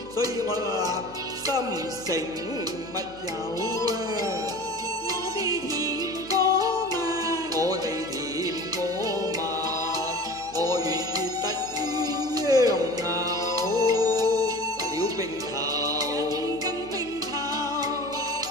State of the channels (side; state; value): right; noise; hum, 21 dB below the sound